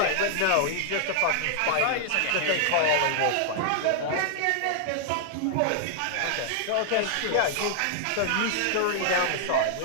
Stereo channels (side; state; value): both; different; correlation -0.01